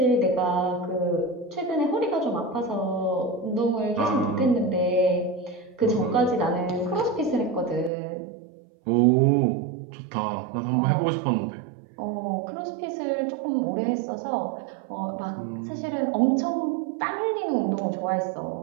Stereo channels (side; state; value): left; drops out; at 7.9 s